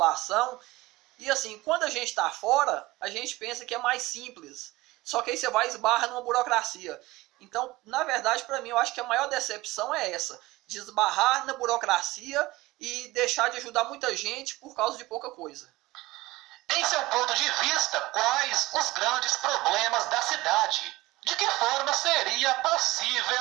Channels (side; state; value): left; quieter; 19.5 dB